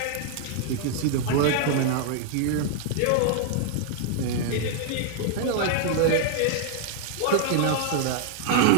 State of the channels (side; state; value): both; different; correlation -0.01